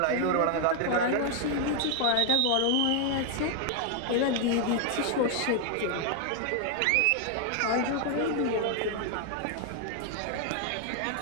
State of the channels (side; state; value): both; different; correlation 0.00